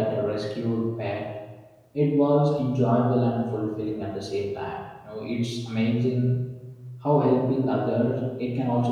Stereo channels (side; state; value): both; identical; correlation 1.00